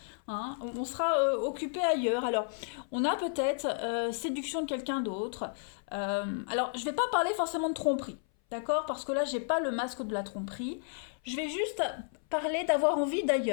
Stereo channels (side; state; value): right; silent; 56 dB below the other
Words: Hein. On sera occupé ailleurs. Alors, on a peut-être séduction de quelqu'un d'autre. Alors, je ne vais pas parler forcément de tromperie. D'accord? Parce que là, j'ai pas le masque de la tromperie. Je vais juste parler d'avoir envie